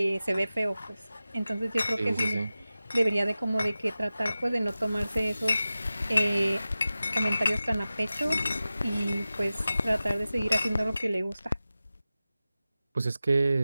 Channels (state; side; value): inverted; both; correlation -0.95